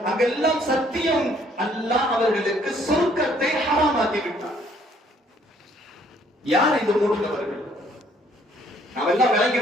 அங்கெல்லாம் சத்தியம் அல்லாஹ் அவர்களுக்கு சொர்க்கத்தை ஹராமாக்கி விட்டார். யார் இந்த 3 நபர்கள்? நாம் எல்லாம் விளங்கி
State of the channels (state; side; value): normal; both; correlation 0.64